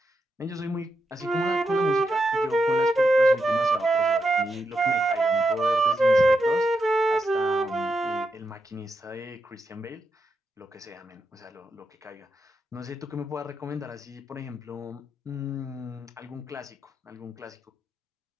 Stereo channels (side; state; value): both; normal; correlation 0.84